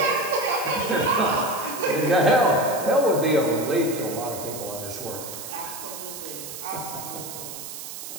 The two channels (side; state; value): right; noise; hiss, 10 dB below the sound